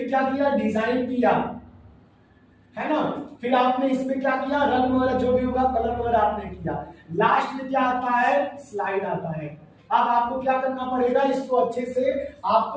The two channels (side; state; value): both; identical; correlation 1.00